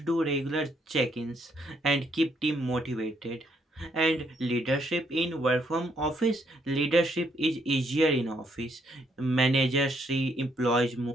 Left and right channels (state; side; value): normal; both; correlation 0.72